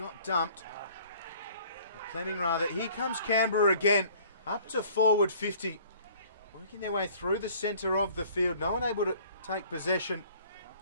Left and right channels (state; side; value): inverted; both; correlation -0.53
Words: dumped. Or Fleming rather. Here comes Canberra again. Up to forward 50. Working their way through the centre of the field. No one able to take possession.